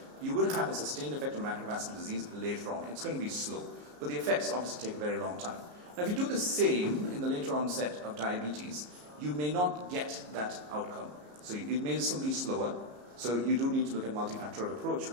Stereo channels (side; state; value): left; late; 34 ms